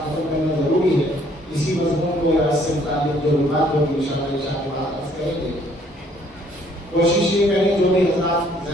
ختم کرنا ضروری ہے. اسی مضمون کو یا اس سے متعلق جو بات ہوگی انشاءاللہ عشاء کے بعد عرض کریں گے. کوشش یہ کریں جو بھی حضرات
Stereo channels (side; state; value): both; normal; correlation 0.63